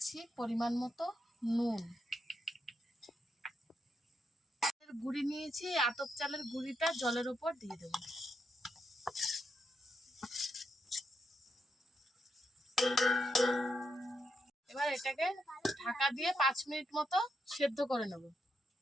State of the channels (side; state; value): both; normal; correlation 0.82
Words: পরিমাণ মতো নুন। গুঁড়ি নিয়েছি, আতপ চালের গুঁড়িটা জলের ওপর দিয়ে দেব। এবার এটাকে ঢাকা দিয়ে 5 মিনিট মতো সেদ্ধ করে নেব।